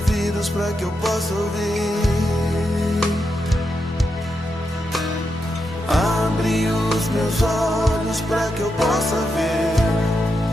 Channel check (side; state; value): both; normal; correlation 0.85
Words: para que eu possa ouvir. Abre os meus olhos para que eu possa ver.